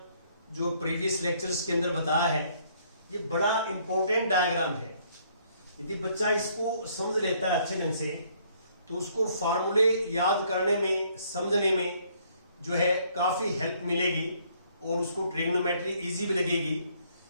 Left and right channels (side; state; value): both; inverted; correlation -0.65